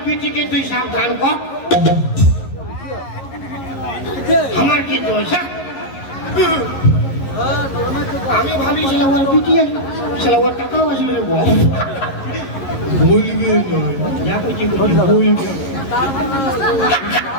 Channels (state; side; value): late; right; 11 ms